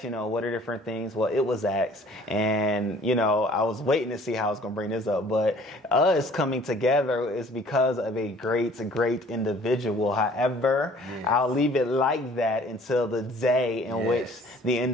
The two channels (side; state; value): both; normal; correlation 0.53